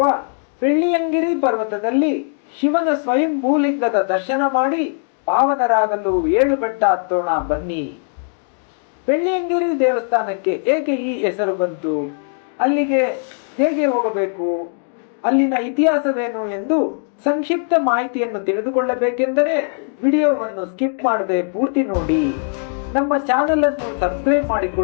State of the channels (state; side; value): silent; right; 60 dB below the other